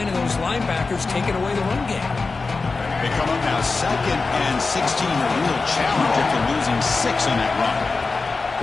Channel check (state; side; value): quieter; right; 4.0 dB